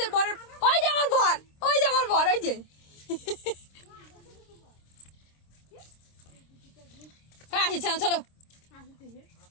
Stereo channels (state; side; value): late; right; 26 ms